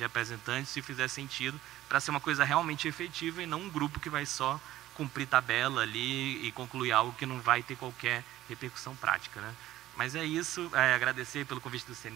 se fizer sentido, para ser uma coisa realmente efetiva e não um grupo que vai só cumprir tabela ali e concluir algo que não vai ter qualquer repercussão prática, né? Mas é isso, agradecer pelo convite do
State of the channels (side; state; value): left; quieter; 14.7 dB